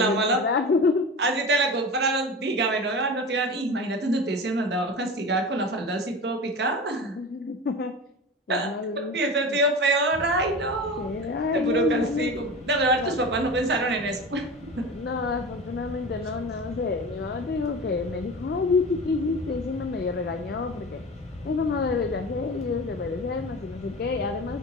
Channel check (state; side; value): normal; both; correlation 0.31